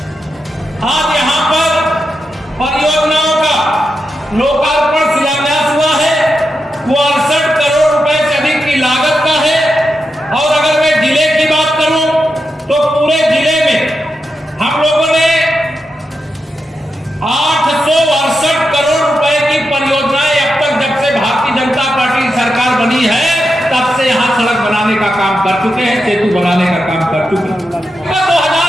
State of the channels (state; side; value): normal; both; correlation 0.87